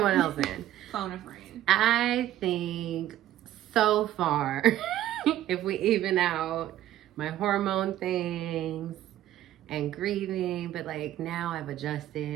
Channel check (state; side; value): quieter; left; 13.1 dB